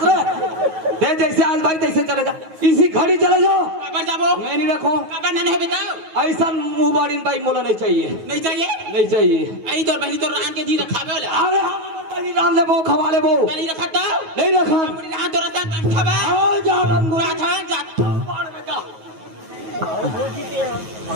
दे जैसे आज भाई तैसे चले जा इसी घड़ी चले जाओ कबर जाबो मैं नहीं रखो कबर ना है बताओ ऐसा मुंह बाड़ी भाई मोला नहीं चाहिए नहीं चाहिए नहीं चाहिए आई तोर बहनी तोर रान के जी रखावे वाला अरे हम बड़ी राम ले वो खवा ले वो नहीं रखा तो नहीं रखा पूरी रान तोर सन खावा आओ जा रंगुरा बुरा था जा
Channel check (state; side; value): late; left; 9.3 ms